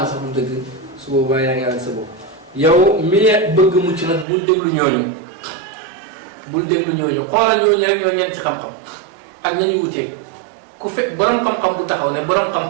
sax du dëgg su boobaa yaa ngi àgg sa bopp yow mi bëgg mucc nag bul déglu ñooñu xoolal ñooñu rek ñoo ñeent ci xam-xam ak nañu wuteeg ku fekk borom xam-xam bu taxaw ne borom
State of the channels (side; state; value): left; drops out; at 4.2 s